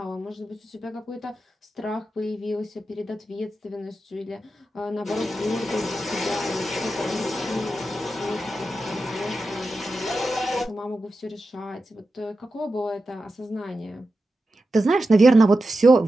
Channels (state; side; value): normal; both; correlation 0.91